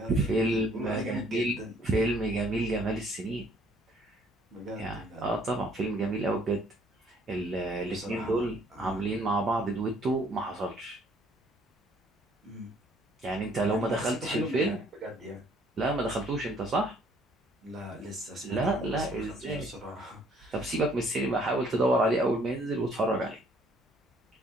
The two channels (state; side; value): normal; both; correlation 0.61